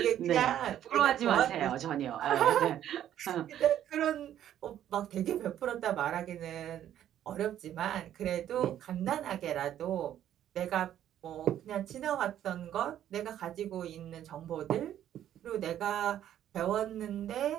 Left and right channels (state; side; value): quieter; left; 11.1 dB